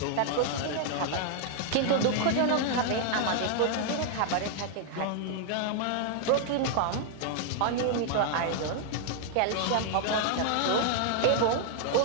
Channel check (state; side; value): different; both; correlation 0.00